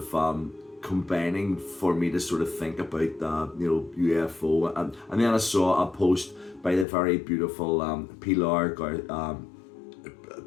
combining for me to sort of think about UFO, and then I saw a post by the very beautiful Pilar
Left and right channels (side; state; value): right; drops out; at 6.9 s